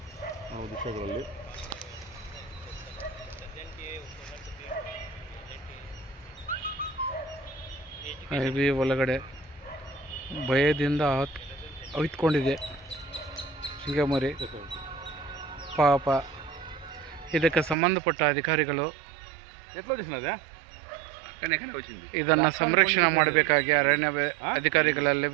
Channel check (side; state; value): left; drops out; at 17.8 s